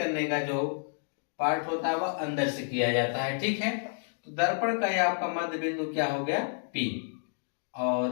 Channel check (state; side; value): silent; right; digital silence